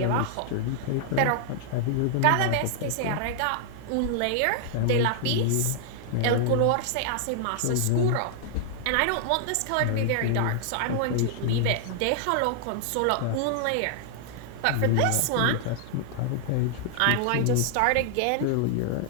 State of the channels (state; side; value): different; both; correlation -0.01